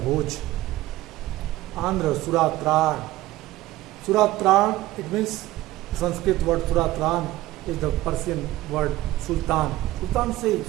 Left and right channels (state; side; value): quieter; left; 16.7 dB